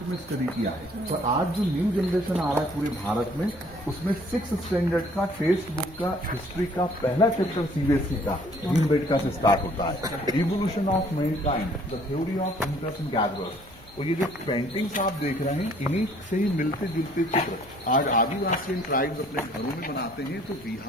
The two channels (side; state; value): both; normal; correlation 0.58